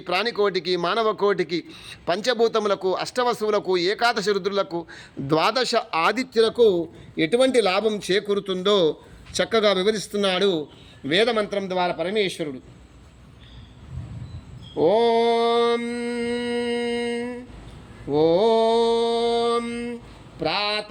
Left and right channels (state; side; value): identical; both; correlation 1.00